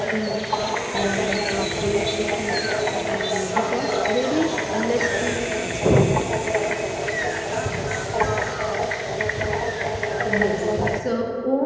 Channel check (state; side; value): identical; both; correlation 1.00